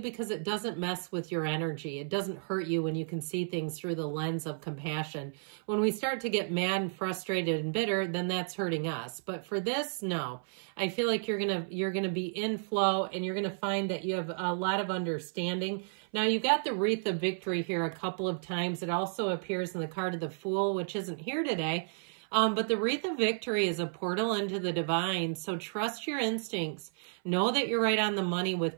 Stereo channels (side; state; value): left; silent; 56 dB below the other